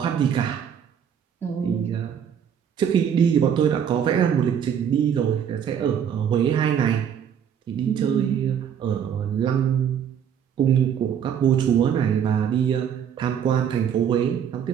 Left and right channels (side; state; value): left; quieter; 8.4 dB